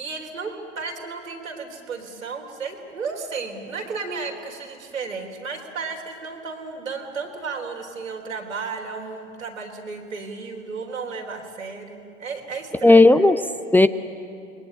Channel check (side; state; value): both; normal; correlation 0.81